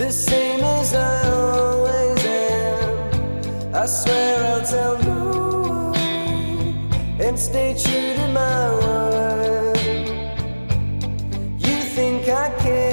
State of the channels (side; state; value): both; inverted; correlation -1.00